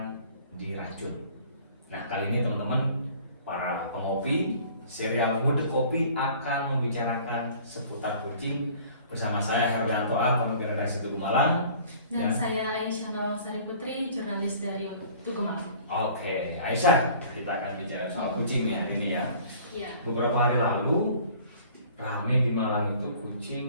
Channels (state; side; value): inverted; both; correlation -0.50